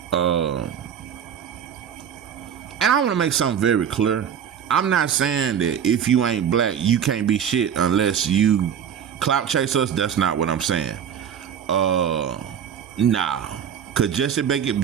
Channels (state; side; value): quieter; left; 8.4 dB